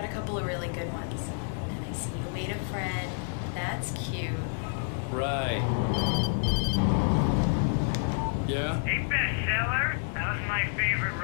a couple of really good ones. And I see you made a friend. That's cute. Right. Yeah? Hey, bestseller, how's my favorite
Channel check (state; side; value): silent; right; 59 dB below the other